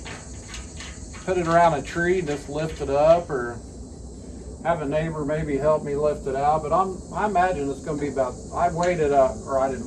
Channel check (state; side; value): identical; both; correlation 1.00